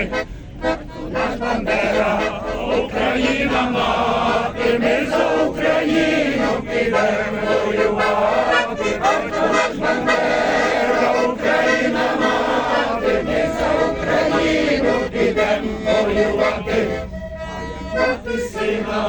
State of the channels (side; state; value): both; identical; correlation 1.00